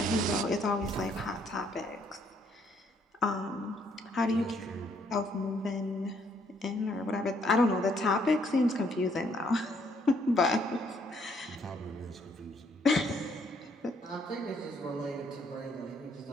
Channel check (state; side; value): normal; both; correlation 0.68